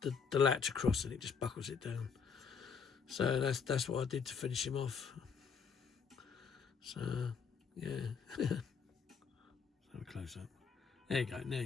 latch across, and it just buckles it down. So that's what I did to finish him off. So yeah, have a close up. There you go. Now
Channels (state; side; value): quieter; right; 6.1 dB